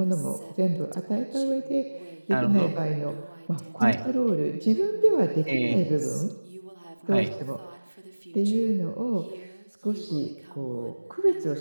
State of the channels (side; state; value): both; inverted; correlation -1.00